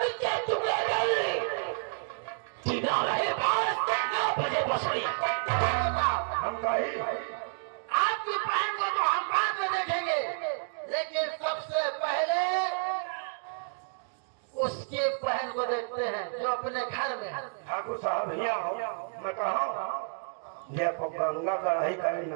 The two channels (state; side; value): silent; left; digital silence